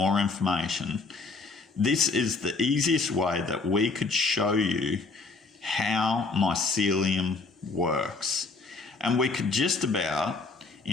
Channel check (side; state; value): right; quieter; 3.9 dB